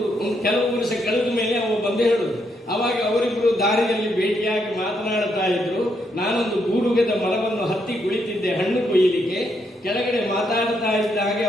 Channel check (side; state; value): both; normal; correlation 0.77